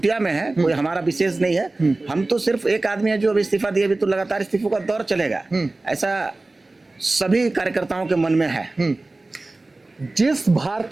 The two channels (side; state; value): left; quieter; 3.1 dB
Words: में है, कोई हमारा विशेष नहीं है। हम तो सिर्फ एक आदमी है जो अब इस्तीफा दिए, अभी तो लगातार इस्तीफों का दौर चलेगा। ऐसा सभी कार्यकर्ताओं के मन में है। जिस